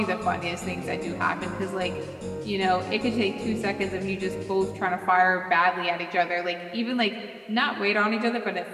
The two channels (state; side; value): identical; both; correlation 1.00